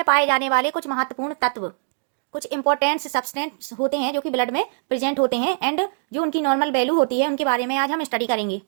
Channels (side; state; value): left; silent; digital silence